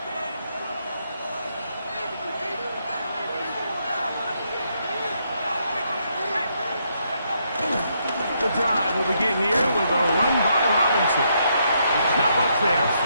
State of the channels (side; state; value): both; inverted; correlation -0.76